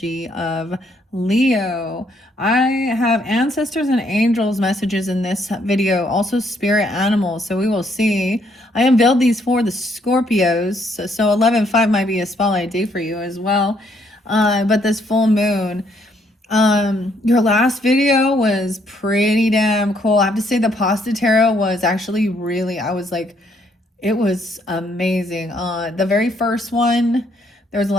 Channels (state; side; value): normal; both; correlation 0.70